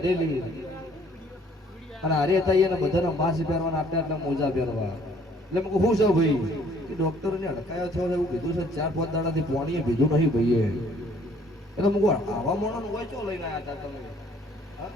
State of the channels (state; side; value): normal; both; correlation 0.60